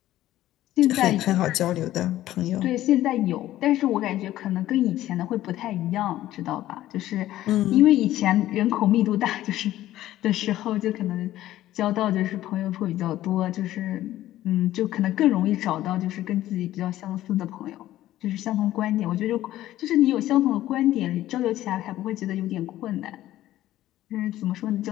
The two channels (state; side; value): quieter; right; 14.2 dB